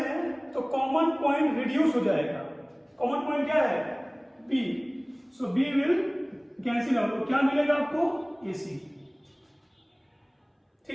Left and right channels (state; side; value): identical; both; correlation 1.00